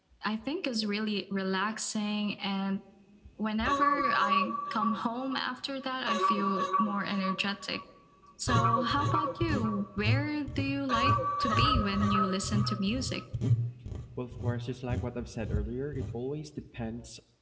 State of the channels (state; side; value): identical; both; correlation 1.00